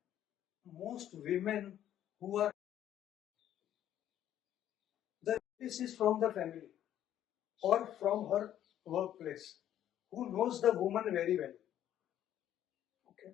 most women who are the this is from the family or from her workplace, who knows the woman very well. Okay.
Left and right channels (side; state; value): right; quieter; 11.3 dB